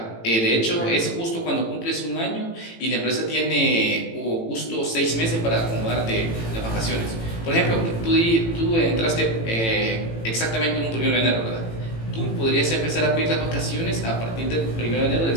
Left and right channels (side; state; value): right; late; 18 ms